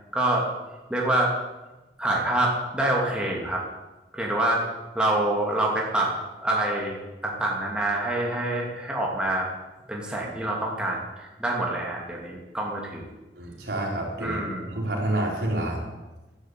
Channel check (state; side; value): normal; both; correlation 0.41